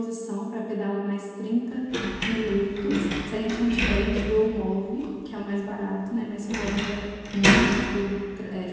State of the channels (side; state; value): both; identical; correlation 1.00